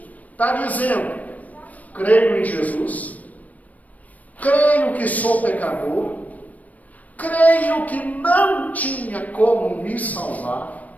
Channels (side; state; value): right; late; 0.073 ms